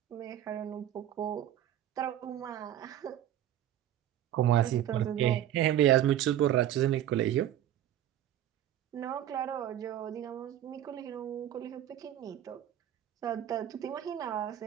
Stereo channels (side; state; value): left; quieter; 11.7 dB